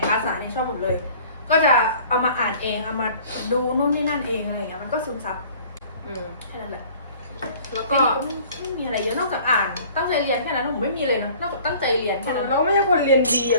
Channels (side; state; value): both; inverted; correlation -0.50